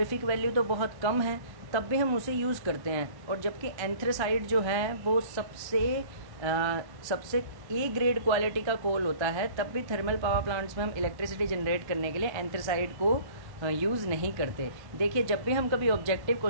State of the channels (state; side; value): late; left; 1.1 ms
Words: वैल्यू तो बहुत कम है, तब भी हम उसे यूज़ करते हैं। और जबकि एंथ्रेसाइट जो है वो सबसे ए ग्रेड क्वालिटी का कोल होता है, तब भी थर्मल पावर प्लांट्स में हम इलेक्ट्रिसिटी जनरेट करने के लिए एंथ्रेसाइट को यूज़ नहीं करते। देखिए, जब भी हम कभी ऑब्जेक्टिव